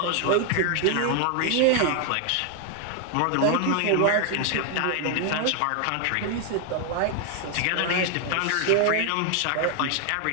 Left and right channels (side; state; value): both; different; correlation 0.01